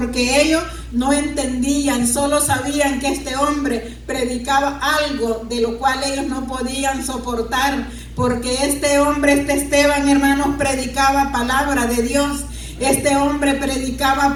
ellos no entendían, solo sabían que este hombre predicaba algo de lo cual ellos no podían soportar, porque este hombre, este Esteban, hermanos, predicaba palabra de Dios. Este hombre predicaba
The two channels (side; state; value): both; identical; correlation 1.00